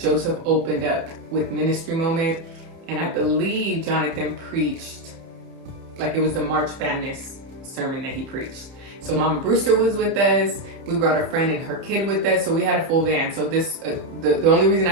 opened up with Ministry Moment. And I believe Jonathan preached, like it was the March Madness sermon that he preached. So Mama Brewster was with us. We brought a friend and her kid with us. So we had a full van. So this, the only reason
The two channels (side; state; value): left; late; 30 ms